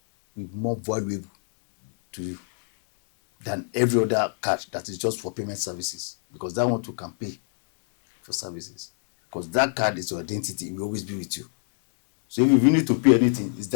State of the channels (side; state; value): right; silent; digital silence